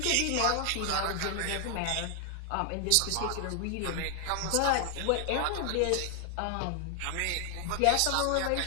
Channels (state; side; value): different; both; correlation 0.00